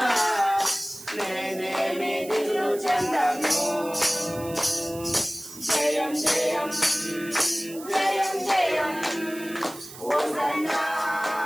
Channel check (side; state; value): right; noise; hiss, 15 dB below the sound